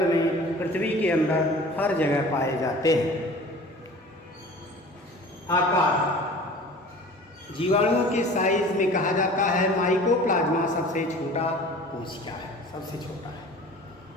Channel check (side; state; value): both; normal; correlation 0.43